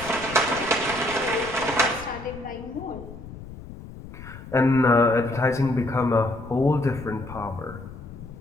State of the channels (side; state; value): left; noise; rumble, 14 dB below the sound